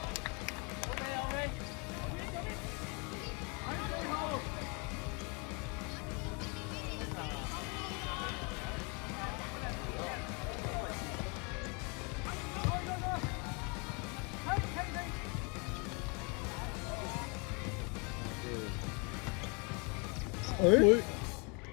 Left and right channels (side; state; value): right; quieter; 32.9 dB